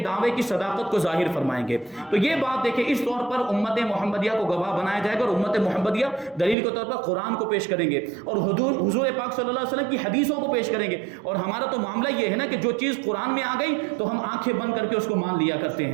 کی صداقت کو ظاہر فرمائیں گے. تو یہ بات دیکھیں، اس طور پر امت محمدیہ کو گواہ بنایا جائے گا، اور امت محمدیہ دلیل کے طور پر قرآن کو پیش کریں گے اور حضور پاک صلی اللہ علیہ وسلم کی حدیثوں کو پیش کریں گے. اور ہمارا تو معاملہ یہ ہے نا کہ جو چیز قرآن میں آ گئی تو ہم آنکھیں بند کر کے اس کو مان لیا کرتے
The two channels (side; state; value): left; drops out; at 6.6 s